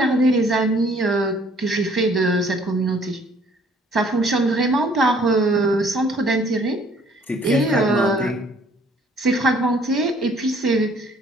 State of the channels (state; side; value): normal; both; correlation 0.59